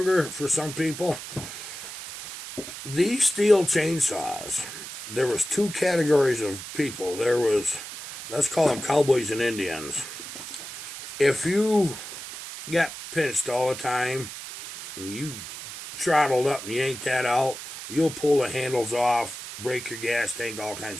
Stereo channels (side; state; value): right; noise; hiss, 10 dB below the sound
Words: for some people. These steel chainsaws, there was two categories of people. There was, let's call them cowboys and Indians. If you got pinched all the time and you throttled up and yanked that out, you'll pull the handles off, break your gas tank, all